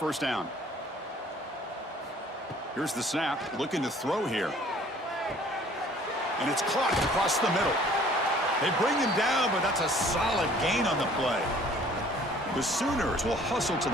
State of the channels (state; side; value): normal; both; correlation 0.54